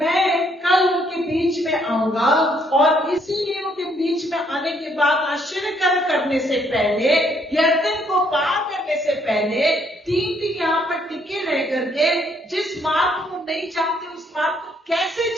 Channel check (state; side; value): normal; both; correlation 0.69